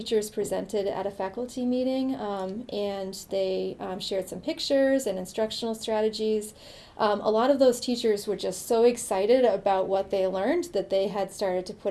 presented at a faculty meeting, and they shared some pictures and instructional strategies. A lot of those teachers were just so excited about what they learned that they had started to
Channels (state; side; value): identical; both; correlation 1.00